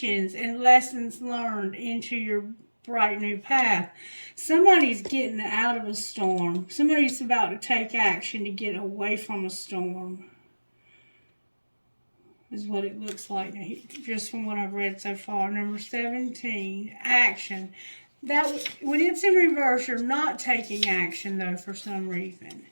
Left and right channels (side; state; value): both; inverted; correlation -1.00